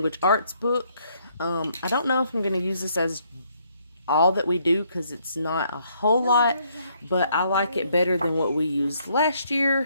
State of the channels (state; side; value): inverted; both; correlation -0.70